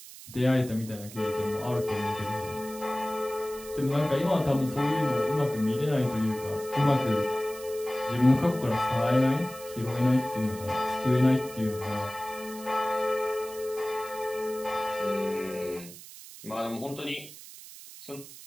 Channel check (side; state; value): right; noise; hiss, 16 dB below the sound